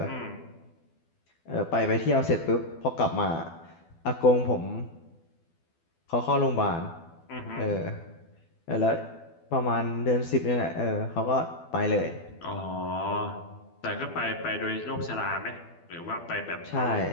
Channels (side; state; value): right; late; 12 ms